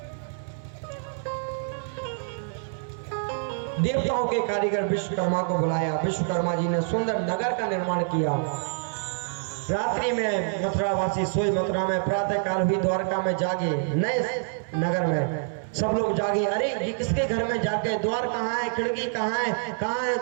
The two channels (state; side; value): silent; left; digital silence